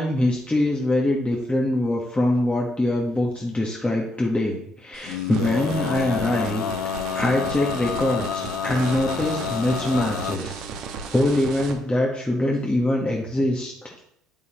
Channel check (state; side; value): normal; both; correlation 0.80